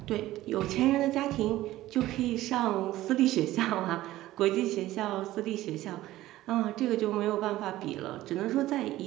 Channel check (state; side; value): quieter; left; 15.7 dB